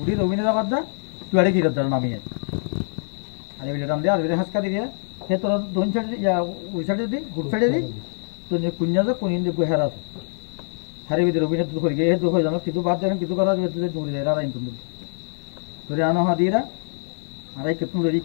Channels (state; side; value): silent; right; digital silence